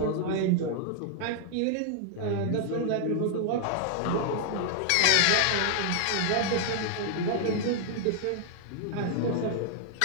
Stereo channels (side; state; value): both; different; correlation 0.00